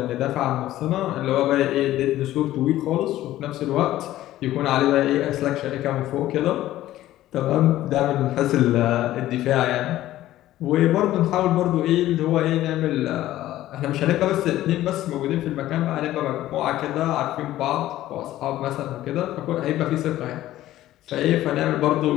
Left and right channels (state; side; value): quieter; right; 14.5 dB